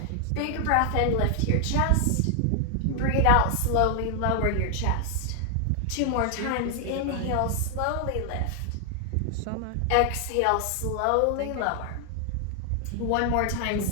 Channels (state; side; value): different; both; correlation 0.00